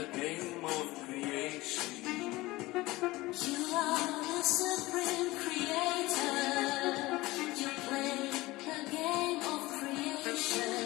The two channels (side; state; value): right; quieter; 19.8 dB